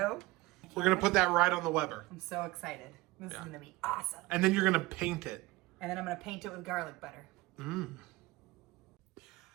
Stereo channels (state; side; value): quieter; left; 20.2 dB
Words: We're going to put that right on the Weber. I'm so excited. This is Yeah. going to be awesome. And then you're going to paint it. And then I'm going to paint it with garlic butter.